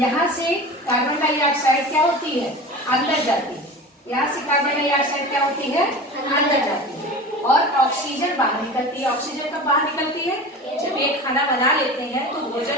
से कार्बन डाइऑक्साइड क्या होती है? अंदर जाती है। यहाँ से कार्बन डाइऑक्साइड क्या होती है? अंदर जाती है, और ऑक्सीजन बाहर निकलती है। ऑक्सीजन कब बाहर निकलती है? जब एक खाना बना लेते हैं तो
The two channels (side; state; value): both; normal; correlation 0.34